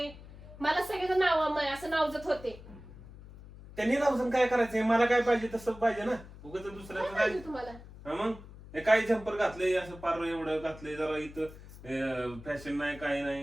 मला सगळ्याचं नाव असं नावजत होते. त्यांनी नावसून काय करायचंय? मला काय पाहिजे तसं पाहिजे ना. उगाच काय दुसऱ्याचं पाहिजे काय तुम्हाला? हा मग हे काय जम्पर घातलंय असं पार एवढं घातलंय जरा इथं फॅशन नाही काय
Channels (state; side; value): noise; left; hum, 17 dB below the sound